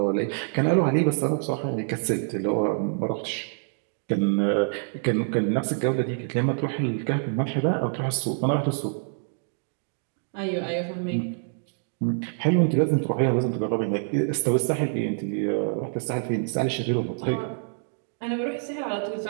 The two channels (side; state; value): left; silent; digital silence